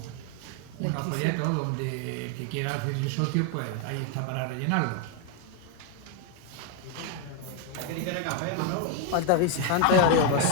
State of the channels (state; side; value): different; both; correlation 0.01